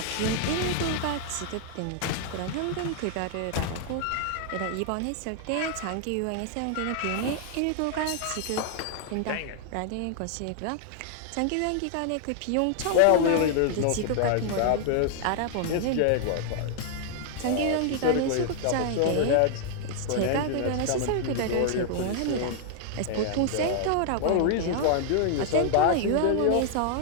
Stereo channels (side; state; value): both; different; correlation 0.00